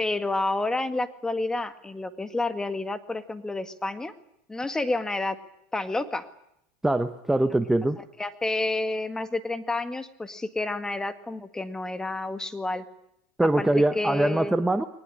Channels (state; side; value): normal; both; correlation 0.92